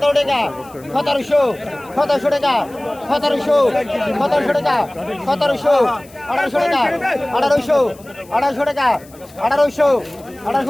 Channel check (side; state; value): left; noise; hiss, 25 dB below the sound